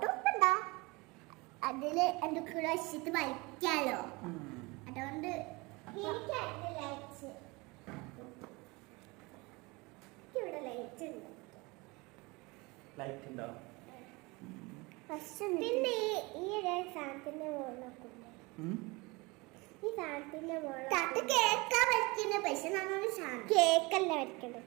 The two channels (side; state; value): left; quieter; 25.0 dB